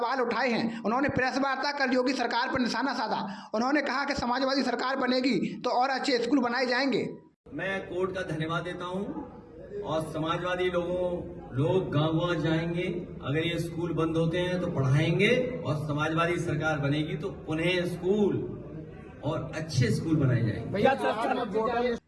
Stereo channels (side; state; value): both; identical; correlation 1.00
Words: उठाए हैं। उन्होंने प्रेस वार्ता कर योगी सरकार पर निशाना साधा। उन्होंने कहा कि समाजवादी सरकार बनेगी तो और अच्छे स्कूल बनाए जाएंगे। मैं कोर्ट का धन्यवाद देता हूं और समाजवादी लोग गांव जाएंगे, अगर ये स्कूल बंद होते हैं तो पढ़ाएंगे और समाजवादी सरकार बनेगी तो उन्हें स्कूल और अच्छे स्कूल बनाए जाएंगे।